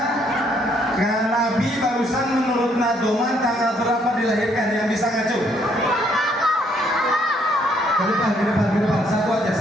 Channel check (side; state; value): both; normal; correlation 0.68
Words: Nabi barusan menurut Nadoman tanggal berapa dilahirkan? Yang bisa ngacu? Ke depan. Satu aja.